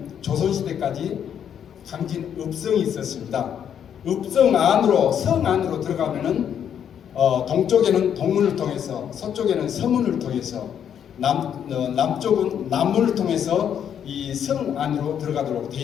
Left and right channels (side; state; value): right; quieter; 8.8 dB